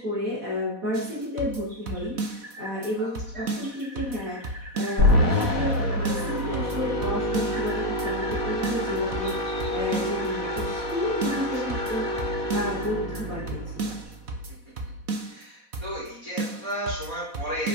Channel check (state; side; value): late; left; 4.1 ms